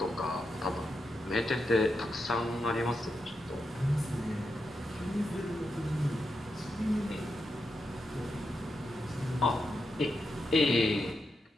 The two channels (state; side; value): normal; both; correlation 0.86